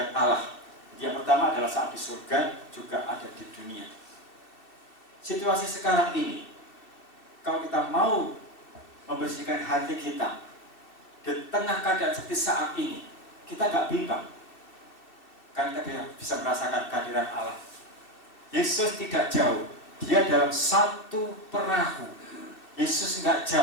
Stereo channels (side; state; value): right; late; 2.6 ms